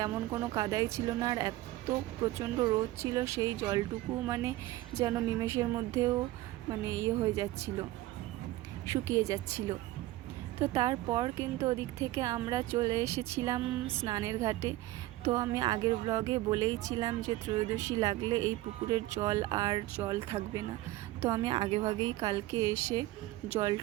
কোনো কাদাই ছিল না। আর এত প্রচণ্ড রোদ ছিল, সেই জলটুকু মানে যেন নিমেষের মধ্যেও মানে হয়ে যাচ্ছিল, শুকিয়ে যাচ্ছিল। তো তারপর কিন্তু ওদিক থেকে আমরা চলে এসেছিলাম স্নানের ঘাটে। তো আমি আগের ব্লগে বলেইছিলাম যে ত্রয়োদশী লাগলে এই পুকুরের জল আর জল থাকবে না। তো আমি আগেভাগেই কালকে এসে জল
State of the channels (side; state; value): left; quieter; 17.0 dB